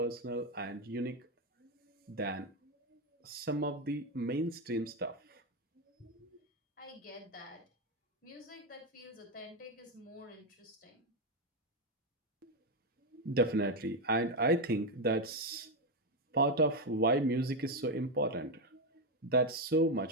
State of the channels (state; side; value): normal; both; correlation 0.07